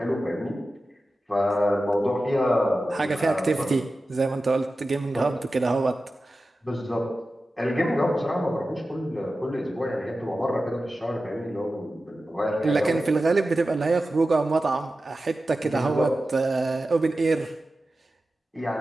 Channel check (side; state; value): both; normal; correlation 0.94